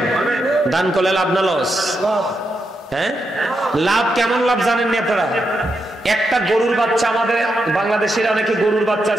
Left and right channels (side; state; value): both; normal; correlation 0.84